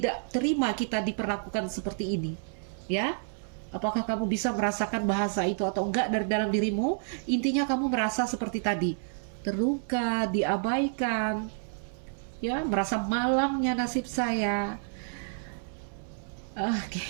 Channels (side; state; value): left; silent; 58 dB below the other